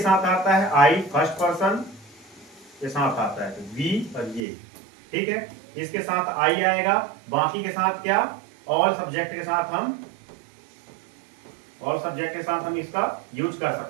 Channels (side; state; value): left; drops out; at 4.5 s